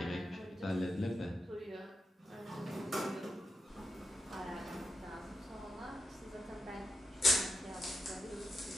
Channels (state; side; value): normal; both; correlation 0.86